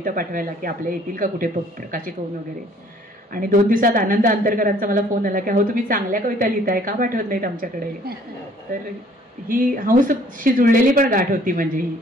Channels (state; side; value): normal; both; correlation 0.58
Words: पाठवायला की आपल्या येतील का कुठे प्रकाशित होऊन वगैरे. आणि 2 दिवसात आनंद अंतरकरांचा मला फोन आला की अहो तुम्ही चांगल्या कविता लिहिताय, का पाठवत नाहीत आमच्याकडे. तर ही हंसशी जुळलेली पण गाठ होती. म्हणजे ही